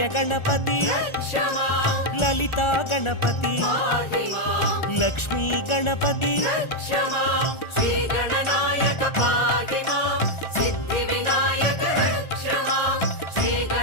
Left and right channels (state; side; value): late; right; 1.4 ms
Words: గణపతి లలితా గణపతి లక్ష్మీ గణపతి